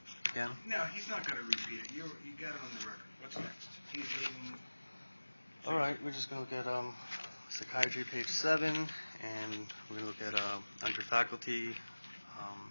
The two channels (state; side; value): inverted; both; correlation -1.00